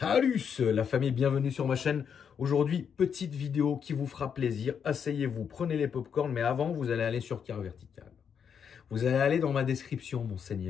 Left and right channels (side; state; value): right; quieter; 7.3 dB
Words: la famille, bienvenue sur ma chaîne. Aujourd'hui, petite vidéo qui vous fera plaisir. Asseyez-vous, prenez les popcorns, mais avant, vous allez aller sur Car Vertical. Vous allez aller dans ma description, mon